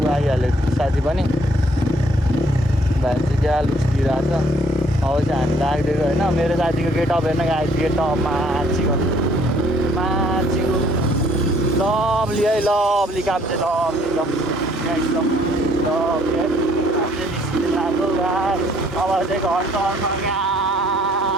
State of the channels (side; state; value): both; normal; correlation 0.63